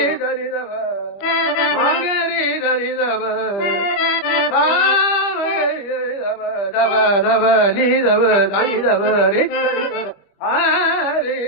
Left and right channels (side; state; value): right; late; 25 ms